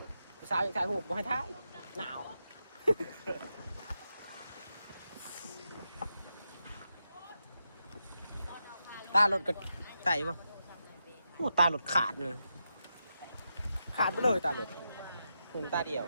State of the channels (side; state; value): both; inverted; correlation -0.86